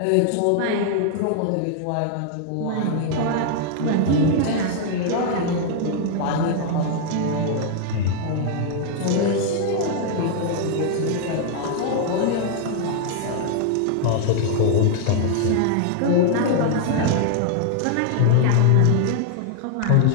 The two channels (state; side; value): different; both; correlation 0.00